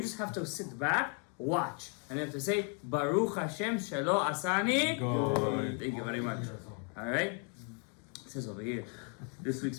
just have to sit back, watch, and have to say Baruch Hashem Shelo Asani. Good. Thank you very much. All right, it says over here, this week's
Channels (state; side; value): quieter; right; 39.8 dB